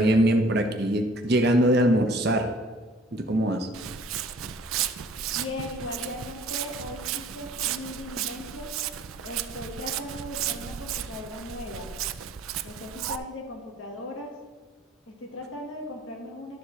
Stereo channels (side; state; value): both; normal; correlation 0.54